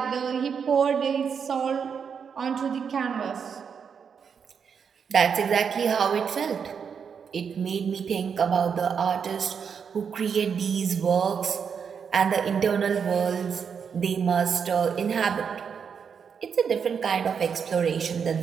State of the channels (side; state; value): left; quieter; 6.7 dB